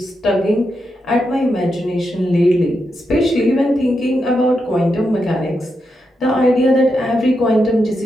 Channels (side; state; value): both; normal; correlation 0.85